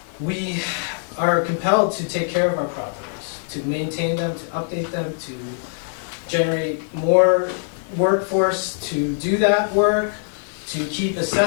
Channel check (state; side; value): silent; right; digital silence